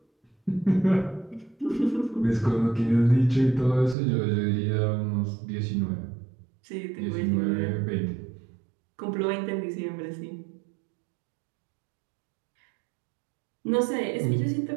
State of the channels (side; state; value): left; drops out; at 4.0 s